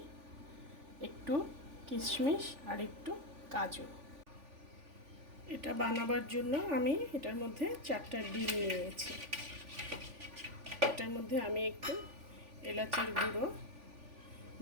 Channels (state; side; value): late; left; 3.4 ms